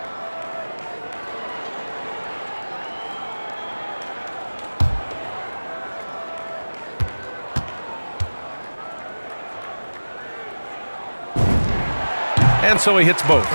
And so he hits both.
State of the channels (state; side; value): inverted; both; correlation -1.00